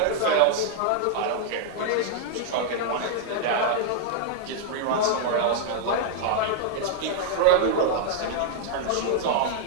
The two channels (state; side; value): different; both; correlation -0.01